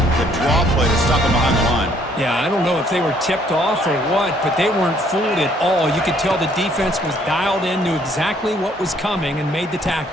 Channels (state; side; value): normal; both; correlation 0.64